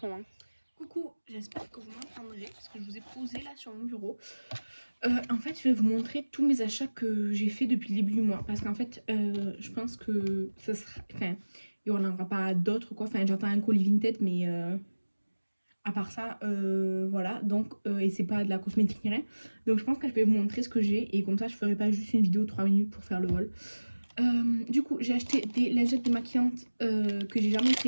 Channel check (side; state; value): both; inverted; correlation -1.00